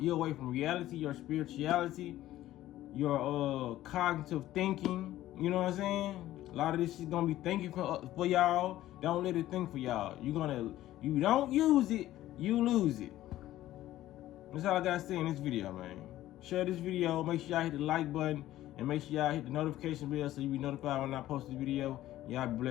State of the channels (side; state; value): right; quieter; 14.4 dB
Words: away from reality, your spirituality, your cognitive thinking. You know what I'm saying? A lot of this shit gonna be thinking for y'all. Don't let it think for y'all. You don't use it, you lose it. That's all I gotta say in this video, man. Share this video. Make sure y'all hit the like button, and make sure y'all hit the notification bell so you be notified when I post this video. Y'all be